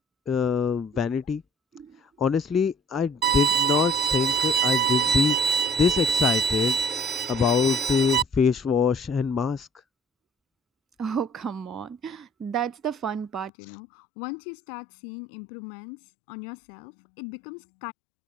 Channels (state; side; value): drops out; right; at 13.5 s